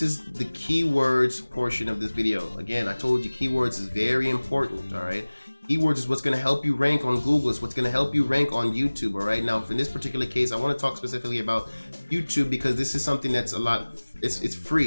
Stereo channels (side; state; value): both; inverted; correlation -1.00